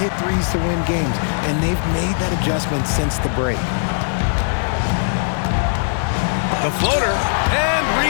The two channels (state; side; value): silent; right; digital silence